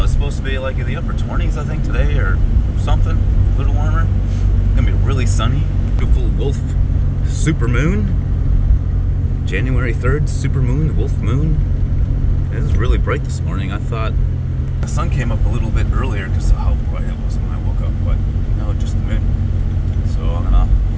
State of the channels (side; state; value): both; identical; correlation 1.00